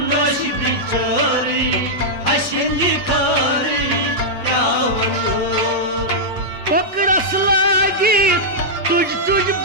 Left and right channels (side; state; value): both; normal; correlation -0.08